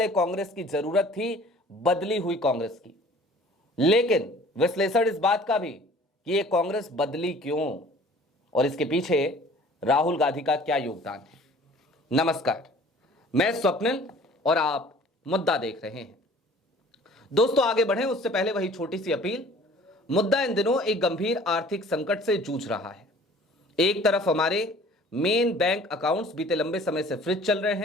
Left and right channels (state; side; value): normal; both; correlation 0.50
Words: कांग्रेस की जरूरत थी, बदली हुई कांग्रेस की। लेकिन विश्लेषण इस बात का भी कि ये कांग्रेस बदली क्यों और इसके पीछे राहुल गांधी का क्या योगदान है। नमस्कार, मैं स्वप्निल और आप मुद्दा देख रहे हैं। दोस्तों, आगे बढ़ें उससे पहले वही छोटी सी अपील। मुद्दा इन दिनों एक गंभीर आर्थिक संकट से जूझ रहा है। एक तरफ हमारे मेन बैंक अकाउंट्स बीते लंबे समय से फ्रीज चल रहे